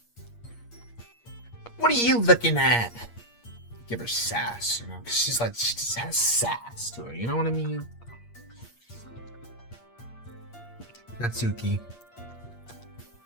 What are you looking at? Give her sass, you know, because she's like, she just has sass to her, you know what I mean? Natsuki.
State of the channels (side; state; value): right; late; 8.5 ms